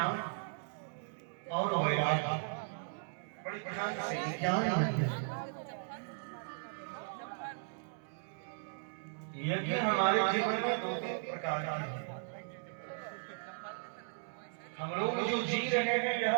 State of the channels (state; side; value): silent; left; digital silence